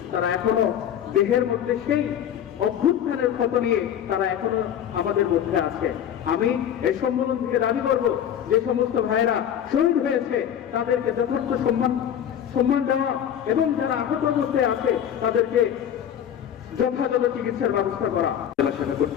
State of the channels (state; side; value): quieter; right; 9.6 dB